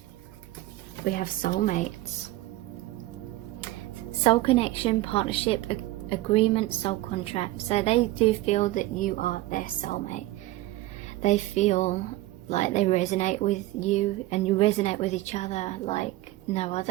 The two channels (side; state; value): left; quieter; 17.4 dB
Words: We have soulmates. Soul connection, partnership, agreement, soul contract. So they do feel that you are their soulmate. They feel like they resonate with you and you resonate with each other like no